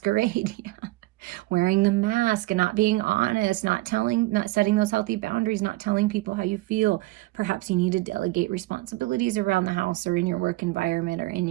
Wearing the mask and not being honest, not setting those healthy boundaries, not telling people how you feel. Perhaps you need to delegate responsibilities around the house or in your work environment or in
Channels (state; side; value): quieter; left; 19.7 dB